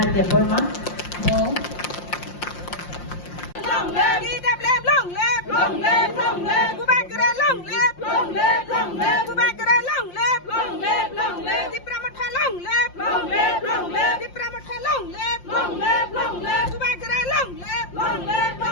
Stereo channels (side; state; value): right; late; 5.7 ms